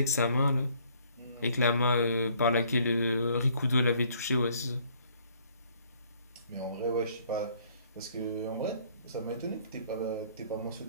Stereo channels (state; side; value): inverted; both; correlation -0.61